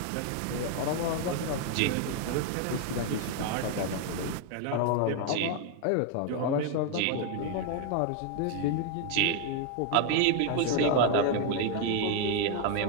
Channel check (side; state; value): both; different; correlation 0.01